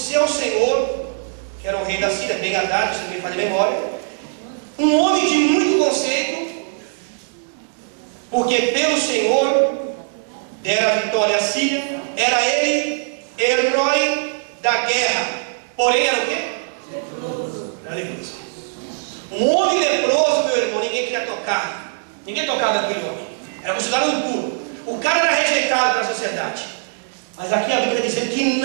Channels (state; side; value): silent; left; digital silence